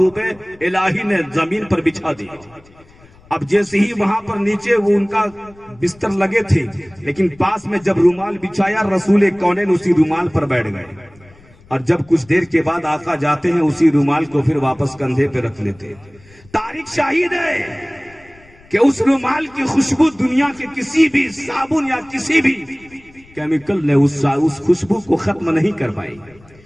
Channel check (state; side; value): noise; left; rumble, 27 dB below the sound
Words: الہی نے زمین پر بچھا دیا۔ اب جیسے ہی وہاں پر نیچے وہ ان کا بستر لگے تھے، لیکن پاس میں جب رومال بچھایا، رسول کونین اسی رومال پر بیٹھ گئے، اور جب کچھ دیر کے بعد آقا جاتے ہیں اسی رومال کو پھر واپس کندھے پہ رکھ لیتے۔ تاریخ شاہد ہے کہ اس رومال کی خوشبو دنیا کے کسی بھی صابن یا کسی بھی کیمیکل نے اس خوشبو کو ختم نہیں کر پائی،